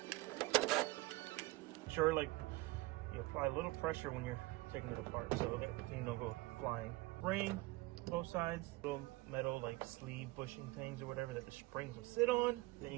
Sure, like you apply a little pressure when you're taking it apart so that things don't go flying. Spring, both sides, little metal like sleeve bushing things or whatever that the springs will sit on. Then you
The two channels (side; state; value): left; quieter; 21.1 dB